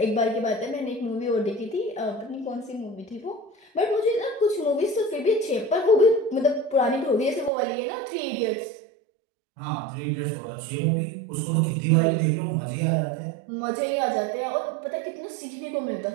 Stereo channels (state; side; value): drops out; left; at 7.5 s